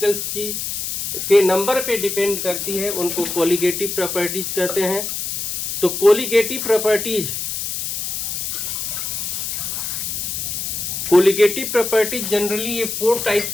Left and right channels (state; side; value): noise; left; hiss, 3 dB below the sound